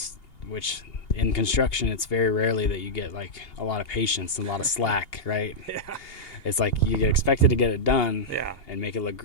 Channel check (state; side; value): late; right; 2.8 ms